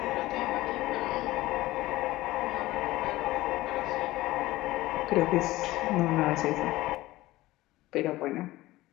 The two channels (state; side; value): quieter; right; 17.8 dB